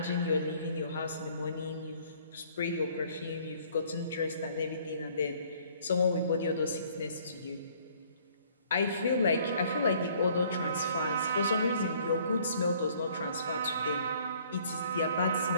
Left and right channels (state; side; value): inverted; both; correlation -0.59